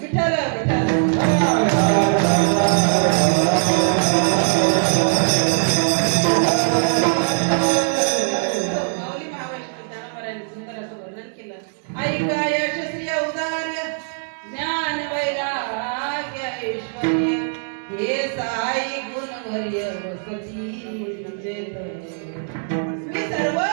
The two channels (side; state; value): left; silent; digital silence